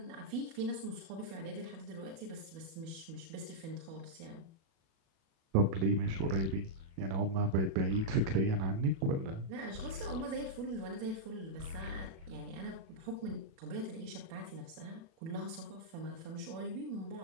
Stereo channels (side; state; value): left; late; 37 ms